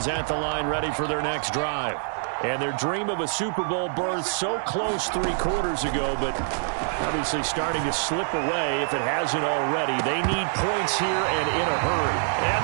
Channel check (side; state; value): left; silent; digital silence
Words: at the line ready for their next drive. And their dream of a Super Bowl berth so close 3 quarters ago, but obviously starting to slip away if it hasn't already. They need points here and in a hurry. And